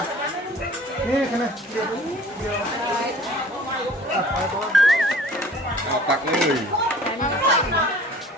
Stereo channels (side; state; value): both; normal; correlation 0.48